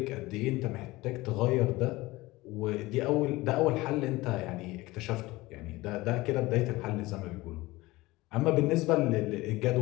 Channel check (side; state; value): right; quieter; 20.1 dB